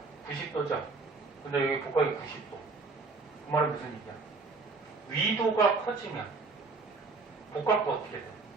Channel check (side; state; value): left; quieter; 4.0 dB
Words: 90도죠? 근데 여기 복각이 90도. 그 말은 무슨 얘기야? 위도가 커지면 복각도 어떻게 돼?